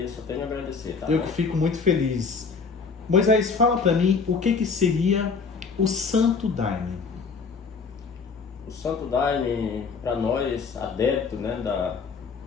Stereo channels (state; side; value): quieter; right; 5.0 dB